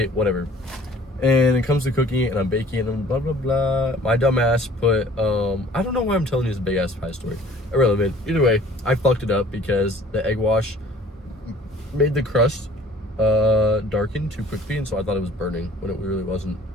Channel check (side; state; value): both; normal; correlation 0.52